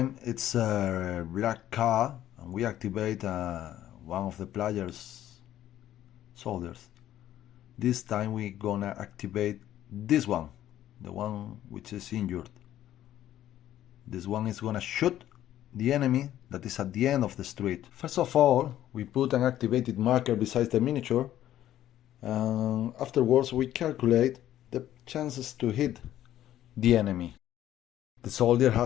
it's a black card and we activate one of the player's soldiers. This time we're gonna activate this one, the one which is injured. This one is gonna shoot the enemy that is at the end of the street. First of all, we put an activated marker beside the miniature, and afterwards we calculate the chances to hit the enemy. The soldier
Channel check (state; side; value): quieter; right; 12.5 dB